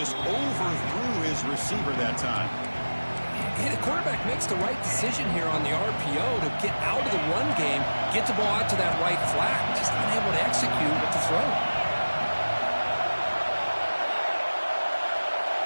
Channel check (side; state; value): both; inverted; correlation -1.00